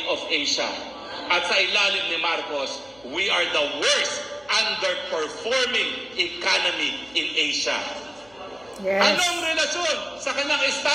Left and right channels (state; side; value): noise; left; hum, 28 dB below the sound